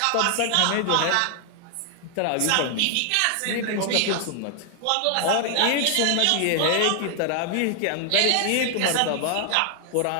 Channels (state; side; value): different; both; correlation 0.00